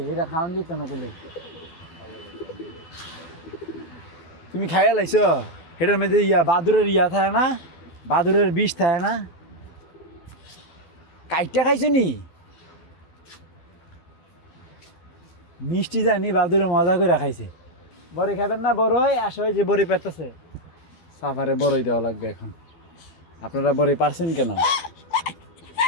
এটা খাওয়ান দিত না বলে। তুমি খাইয়া লাইছ? এটার মধ্যে বাদুরের থাকে না, বাদুরের বিষ থাকে না। কাইটটা খাইছো নি? মিষ্টি জানি বাদুরে মজা করে খাইছে। বড়ি খাবেন না? বড়ই আসো, যে বড়ি পেতেছে। সাফারে বড়ই দেওয়া লাগবে এখন। আপনারা বড়ি পারছেন কেন?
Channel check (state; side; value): late; right; 12 ms